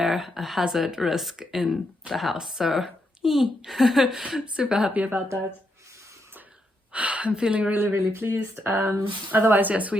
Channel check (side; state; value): both; normal; correlation 0.80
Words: hazard risk in the house. So super happy about that. I'm feeling really, really pleased. Otherwise, yes,